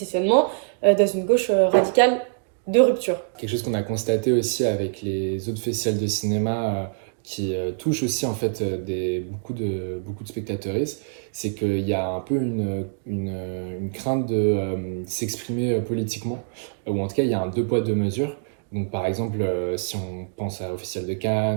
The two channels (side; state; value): left; silent; digital silence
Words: dans une gauche radicale de rupture. Quelque chose qu'on a constaté aussi avec les autres festivals de cinéma qui touchent aussi en fait beaucoup de spectateuristes, c'est qu'il y a un peu une crainte de s'exprimer politiquement, ou en tout cas il y a un deux poids deux mesures. Donc par exemple, si on pense au Festival de